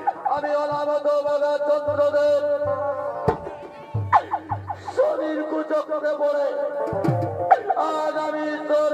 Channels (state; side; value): identical; both; correlation 1.00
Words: আমি অনামত বাবা চন্দ্রদেব শরীর কুচক্রে পড়ে আজ আমি